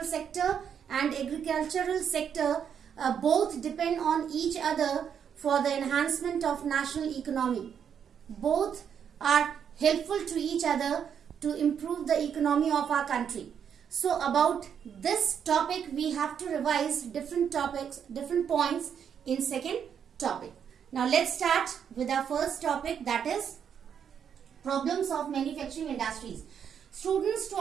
sector and agricultural sector, both depend on each other for the enhancement of national economy. Both are helpful to each other to improve the economy of our country. So about this topic we have to revise different topics, different points in second topic. Now let's start with our first topic, that is problems of manufacturing industries. Students, to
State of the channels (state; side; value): quieter; left; 7.9 dB